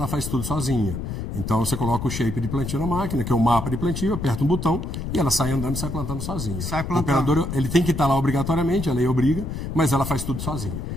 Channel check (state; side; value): noise; left; rumble, 5 dB below the sound